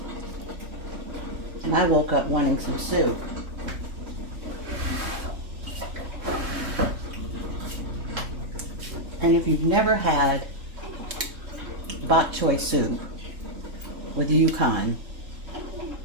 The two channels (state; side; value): late; left; 3.7 ms